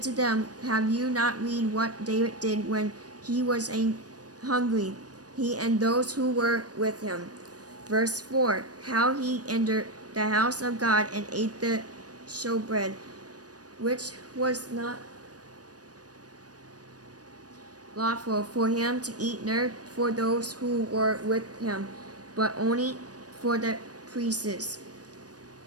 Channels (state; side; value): late; left; 0.68 ms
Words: to them, Have you not read what David did when he was hungry, he and those who were with him? Verse 4. How he entered the house of God and ate the showbread, which was not lawful for him to eat, nor for those who were with him, but only for the priests.